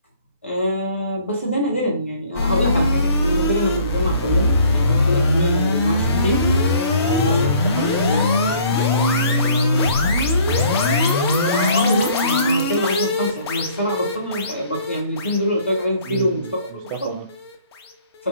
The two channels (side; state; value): both; inverted; correlation -0.56